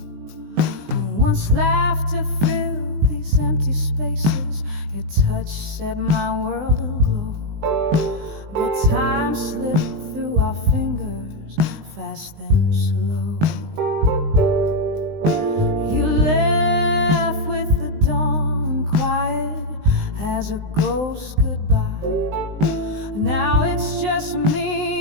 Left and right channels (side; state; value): left; late; 19 ms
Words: Once laughter filled these empty spaces, your touch set my world aglow. But time slipped through our fingers, fast then slow. You left with the dawn, quiet as a ghost goodbye. Now it's just